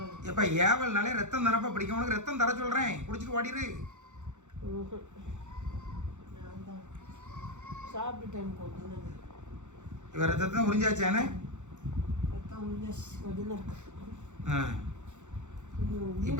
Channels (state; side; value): late; left; 0.84 ms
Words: எப்போ ஏவல்னாலே ரத்தம் தானப்பா பிடிக்கும். உனக்கு ரத்தம் தர சொல்கிறேன், குடிச்சிட்டு ஓடிடு. நான் தான் சாப்பிட்டுட்டேன் கொஞ்சம். இவன் ரத்தத்தை தான் உறிஞ்சாச்சானே. ரத்தம் உறிஞ்சாச்சு கொஞ்சம் தான் இருக்கு.